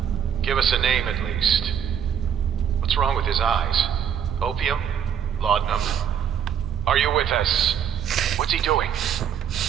Give us a name at least. What's wrong with his eyes? Opium? Laudanum? Are you with us? What's he doing?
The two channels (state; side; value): quieter; left; 8.6 dB